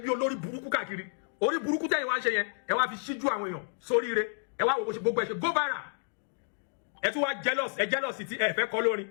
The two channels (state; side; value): silent; right; digital silence